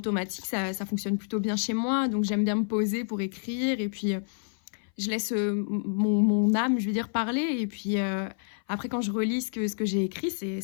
ça fonctionne plutôt bien chez moi. Donc j'aime bien me poser pour écrire et puis je laisse mon âme, je veux dire, parler. Et puis après, quand je relis ce que j'ai écrit,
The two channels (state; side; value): silent; right; 58 dB below the other